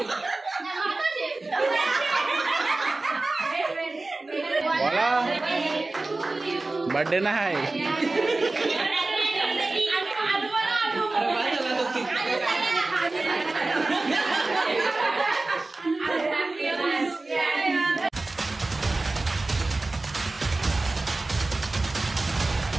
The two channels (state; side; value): quieter; left; 3.2 dB